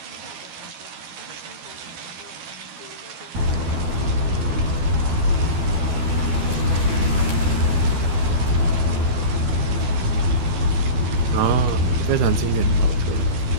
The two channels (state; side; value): late; left; 13 ms